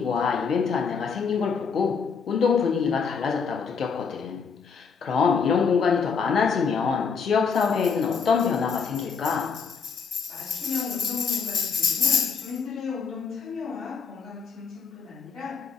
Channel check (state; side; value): quieter; right; 5.7 dB